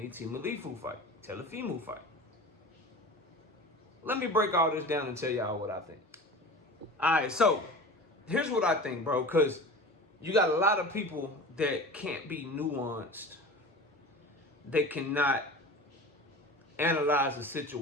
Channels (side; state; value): both; normal; correlation 0.34